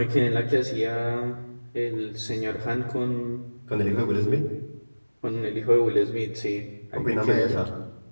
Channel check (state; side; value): inverted; both; correlation -1.00